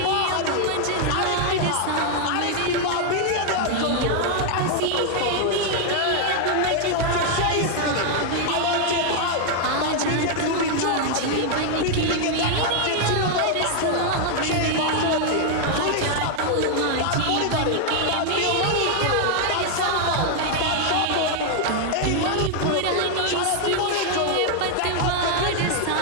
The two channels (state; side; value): different; both; correlation 0.00